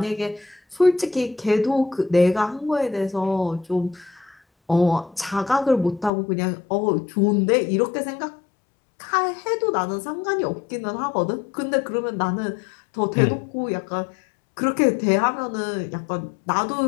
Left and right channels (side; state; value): right; drops out; at 6.1 s